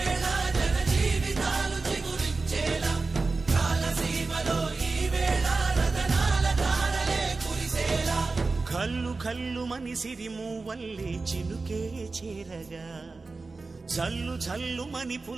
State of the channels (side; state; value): left; quieter; 3.8 dB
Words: జన జీవితాలు చిగురించేలా కాలసీమలో ఈ వేళ రతనాల ధారలే కురిసేలా కల్లు కల్లు మని సిరిమూవల్లే చినుకే చేరగా జల్లు జల్లు మని